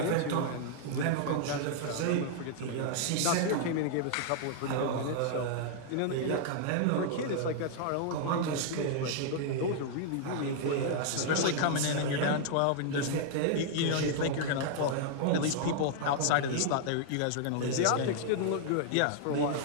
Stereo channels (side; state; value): both; different; correlation -0.01